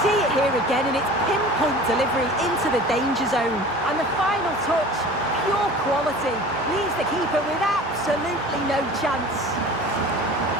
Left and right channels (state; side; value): normal; both; correlation 0.41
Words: see it here again, and it's pinpoint delivery into the danger zone. And the final touch, pure quality, leaves the keeper with absolutely no chance.